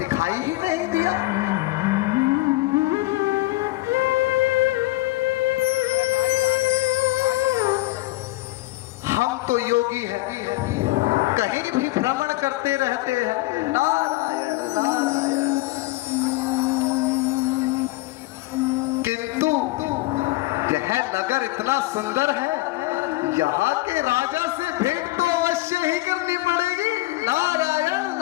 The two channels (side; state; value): right; quieter; 19.5 dB